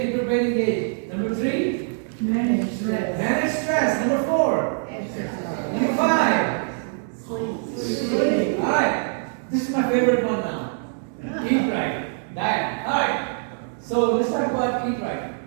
keep your brain engaged. Number 3? Manage stress. Manage stress. Number 4? Number 5? Alright, this is my favorite one now. Eat right. Diet. Alright. So let's talk about eat right.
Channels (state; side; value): silent; left; digital silence